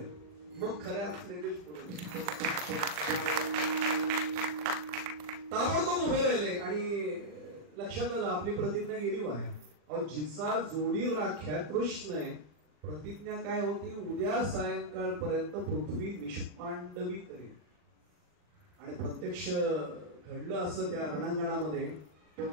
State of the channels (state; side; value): late; left; 40 ms